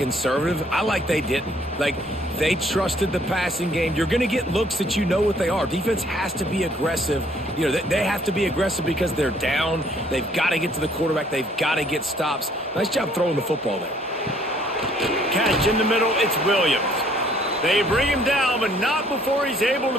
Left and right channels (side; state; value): both; normal; correlation 0.62